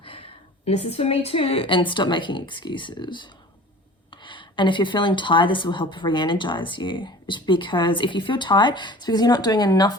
this is for me too, and stop making excuses. And if you're feeling tired, this will help re-energize you. It's because if you feel tired, it's because you're not doing enough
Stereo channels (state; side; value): normal; both; correlation 0.42